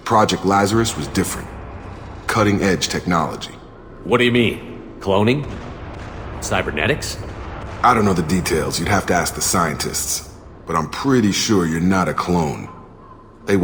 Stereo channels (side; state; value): both; identical; correlation 1.00